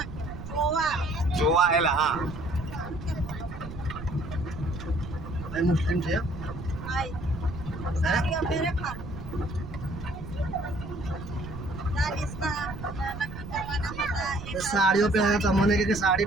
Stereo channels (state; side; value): noise; right; rumble, 10 dB below the sound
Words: જોવા એલા હા મુસ્લિમ છે સાડીઓ પહેરે તમને કે સાડી